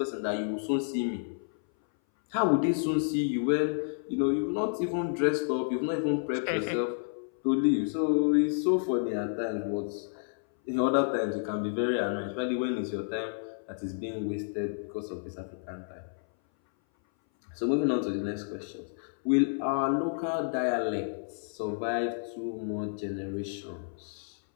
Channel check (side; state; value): right; silent; 58 dB below the other